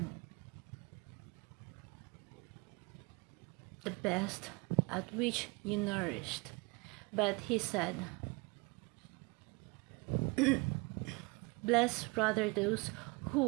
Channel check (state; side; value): quieter; left; 27.5 dB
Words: the best at which you nourished." But he said, "Blessed rather those